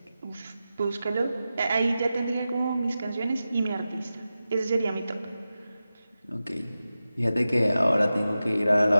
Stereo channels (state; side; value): inverted; both; correlation -0.93